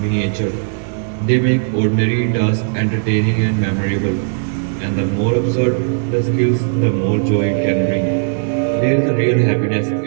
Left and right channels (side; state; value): left; silent; digital silence